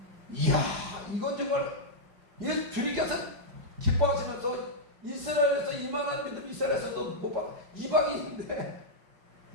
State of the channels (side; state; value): left; late; 4.9 ms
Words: 이야, 이건 정말, 주님께서 기뻐하시면서 이스라엘에서 이만한 믿음, 이스라엘에서도 못 받아. 이방인인데,